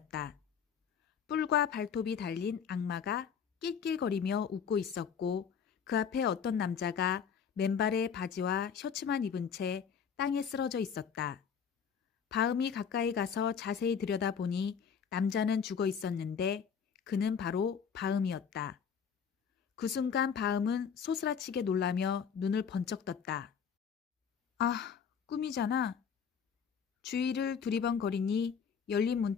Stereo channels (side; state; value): right; quieter; 7.0 dB